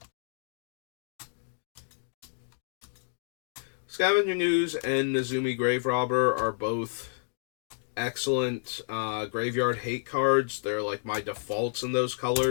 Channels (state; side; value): silent; right; digital silence